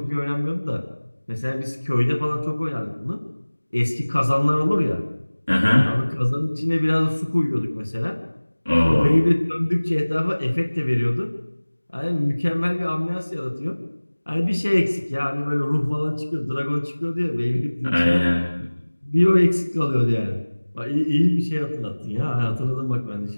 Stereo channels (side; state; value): both; inverted; correlation -1.00